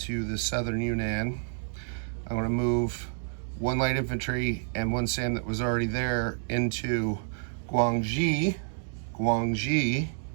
the southern Yunnan. I'm going to move 1 light infantry and 1 SAM that was already there into Guangxi.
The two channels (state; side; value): silent; left; digital silence